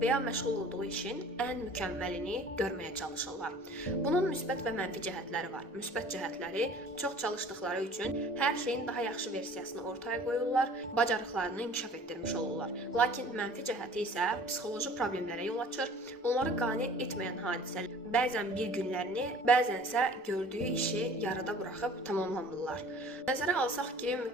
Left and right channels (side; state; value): both; normal; correlation 0.47